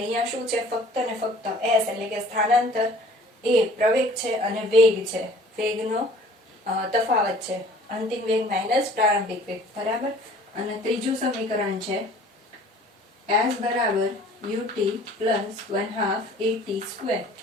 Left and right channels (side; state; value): both; normal; correlation 0.51